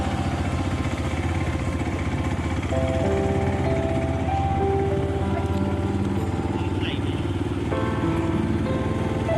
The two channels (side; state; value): left; noise; hum, 22 dB below the sound